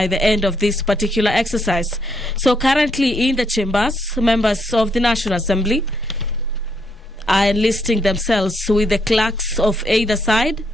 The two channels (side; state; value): both; normal; correlation 0.75